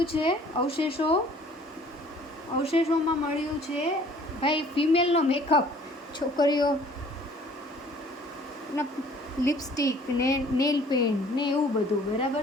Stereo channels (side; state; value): both; normal; correlation 0.54